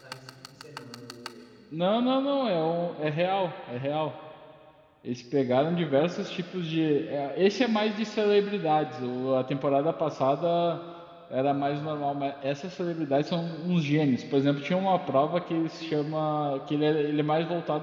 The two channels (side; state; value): both; identical; correlation 1.00